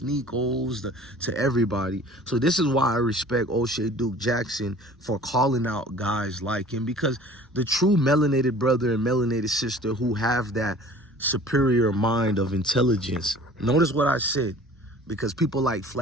to everybody. So this is why I respect O'Shea Duke Jackson for calling out guys like him, because the true melanated brother and melanated sister who have that superior mind of intelligence, notice what I said, because people like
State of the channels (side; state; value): both; normal; correlation 0.47